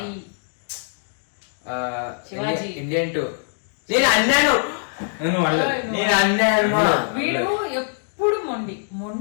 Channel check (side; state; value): right; silent; digital silence